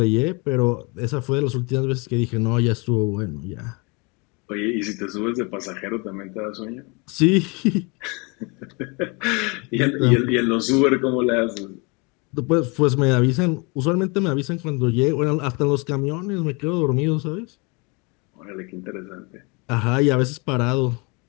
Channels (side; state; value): right; quieter; 29.0 dB